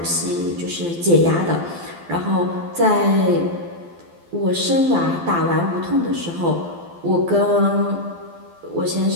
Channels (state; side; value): late; left; 12 ms